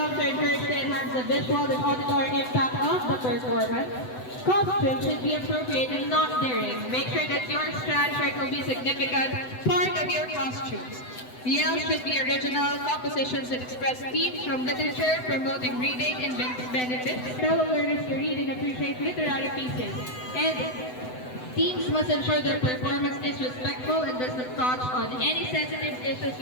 are encouraged to enhance the visual and auditory impact of the performance. Costumes should be appropriate and not daring. Make sure that your strand shirt will be a significant part of your costumes. Yells should be original compositions that express themes from literature, promoting reading and benefits. Fellow learners to read and appreciate literary pieces. And teams must ensure their performance is respectful and does not touch on any sensitive issues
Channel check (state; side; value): late; right; 7.9 ms